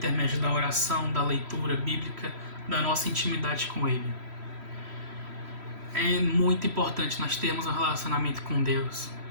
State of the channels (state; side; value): late; left; 3.1 ms